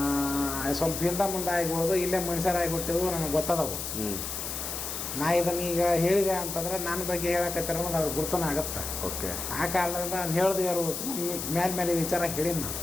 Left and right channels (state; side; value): noise; left; hiss, 5 dB below the sound